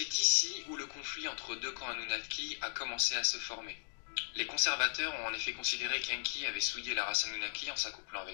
ici où le conflit entre deux camps Anunnaki a commencé à se former. Les conservateurs ont en effet considéré qu'Enki avait souillé la race Anunnaki en s'accouplant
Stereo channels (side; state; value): right; silent; digital silence